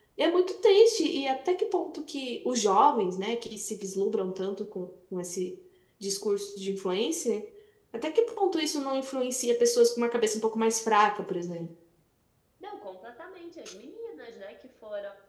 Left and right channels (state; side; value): identical; both; correlation 1.00